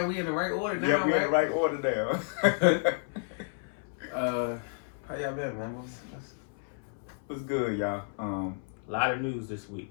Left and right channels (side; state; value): right; silent; 57 dB below the other